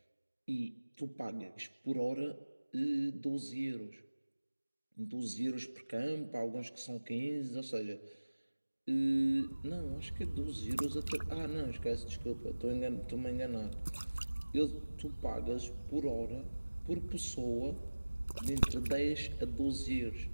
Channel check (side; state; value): both; inverted; correlation -1.00